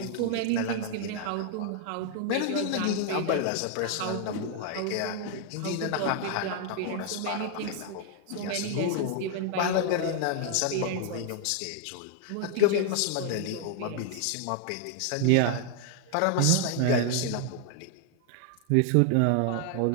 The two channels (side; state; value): both; different; correlation 0.00